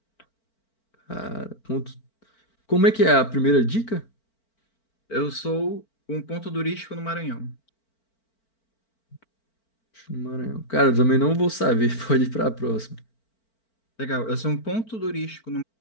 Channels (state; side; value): late; right; 4.4 ms